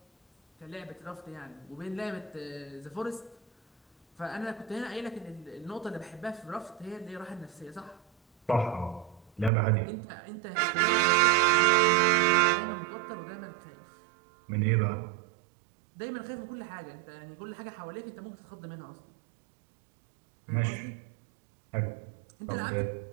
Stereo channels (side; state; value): left; drops out; at 9.5 s